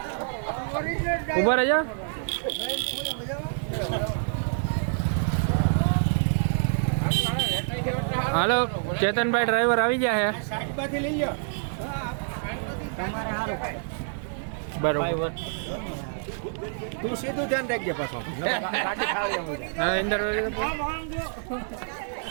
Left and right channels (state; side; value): silent; left; digital silence